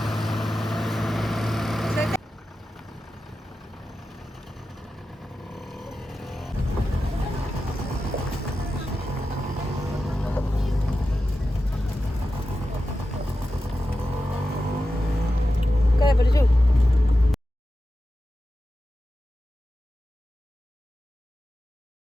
काय बरं जेव.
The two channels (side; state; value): both; normal; correlation 0.92